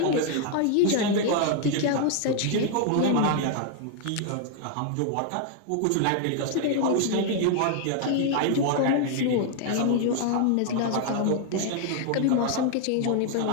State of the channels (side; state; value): both; different; correlation 0.00